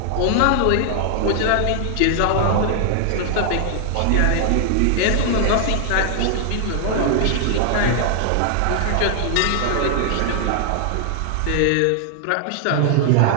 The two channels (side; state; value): both; different; correlation 0.00